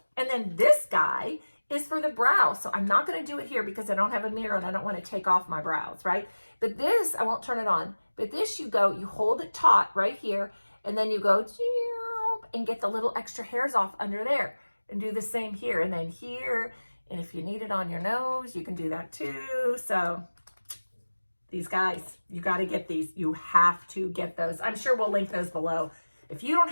And then this guy is for the brow. So I'm not gonna do it here because I don't have a mirror and I don't wanna take off my brows, right? But this, I won't turn it on, but this you hold it taut right here, and then you go and get the little extra hairs off under there, and do the same here, and then here, and if you need it on your nose, you can do that too. So these guys, you got to get these. You have to get those. I'm sure we'll link those below. If you don't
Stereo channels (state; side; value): inverted; both; correlation -1.00